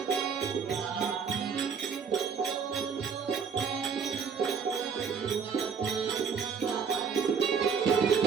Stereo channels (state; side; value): quieter; left; 6.3 dB